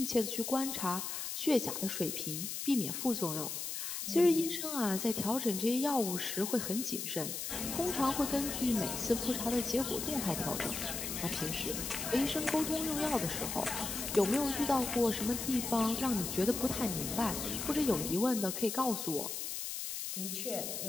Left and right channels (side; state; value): left; noise; hiss, 4 dB below the sound